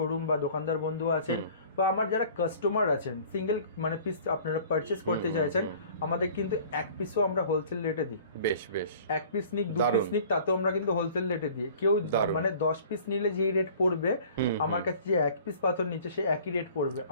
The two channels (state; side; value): inverted; both; correlation -0.48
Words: বা দোকানদার বন্ধু আছেন বা আমার যারা কাস্টমার আছেন, সিঙ্গেল মানে পিস আপনারা পারচেস করতে চাইছেন, আমাদের কিন্তু এক পিসও আমরা হোলসেল রেটে দিই। বেশ বেশ। এক পিস নিক, দু পিস নিক, তাতেও আমরা কিন্তু হোলসেল রেটে দিই। কেউ মানে 10 পিস নিলে যেই রেট পড়বে, আমার কাছে যে এক পিস পাথর নিচ্ছে সে একই রেট পড়বে।